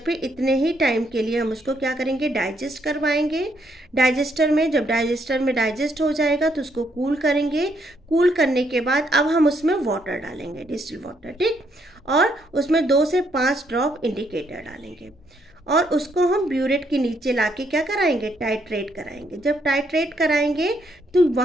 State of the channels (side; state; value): both; normal; correlation 0.73